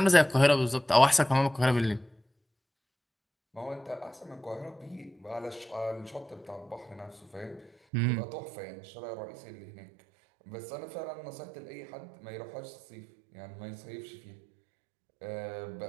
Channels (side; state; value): left; drops out; at 7.7 s